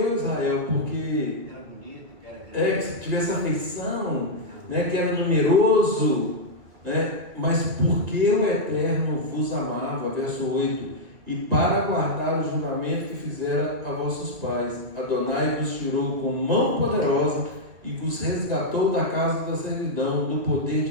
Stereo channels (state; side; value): late; left; 2.3 ms